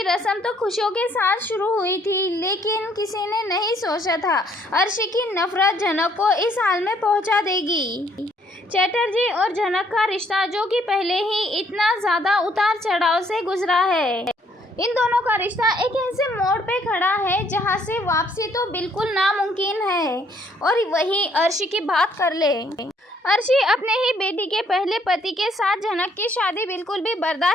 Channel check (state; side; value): normal; both; correlation 0.66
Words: रस्म तो खुशियों के साथ शुरू हुई थी, लेकिन किसी ने नहीं सोचा था अर्शी की नफरत झनक को इस हाल में पहुंचा देगी। चटर्जी और झनक का रिश्ता, जो कि पहले ही इतना ज़्यादा उतार चढ़ाव से गुजरा है, इन दोनों का रिश्ता एक ऐसे मोड़ पे खड़ा है जहां से वापसी तो बिल्कुल नामुमकिन है। और वहीं अर्शी की बात कर ले। अर्शी अपने ही बेटी के पहले पति के साथ झनक की शादी बिल्कुल भी